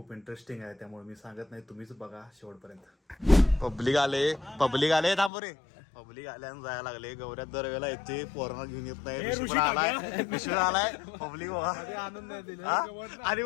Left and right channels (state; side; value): drops out; right; at 5.3 s